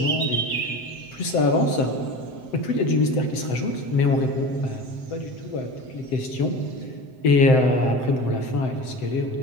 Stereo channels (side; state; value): right; late; 7.7 ms